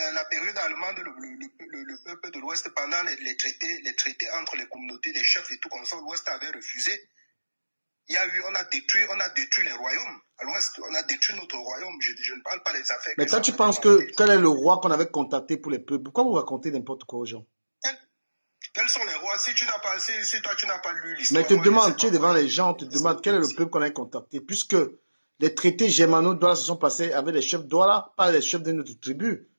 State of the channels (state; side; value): inverted; both; correlation -1.00